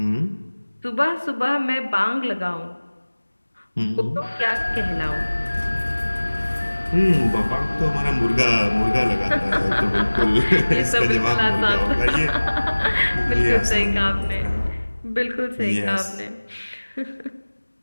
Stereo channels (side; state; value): both; inverted; correlation -1.00